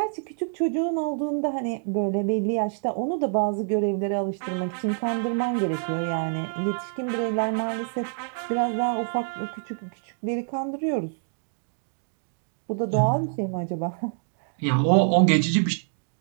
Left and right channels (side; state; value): left; silent; 57 dB below the other